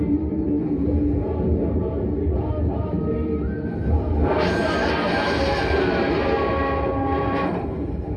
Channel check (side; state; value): both; identical; correlation 1.00